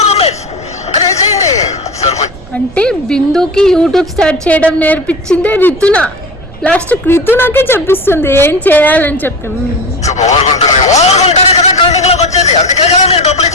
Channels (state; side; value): noise; right; rumble, 19 dB below the sound